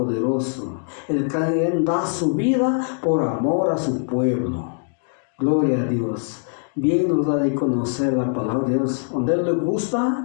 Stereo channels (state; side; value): silent; right; 62 dB below the other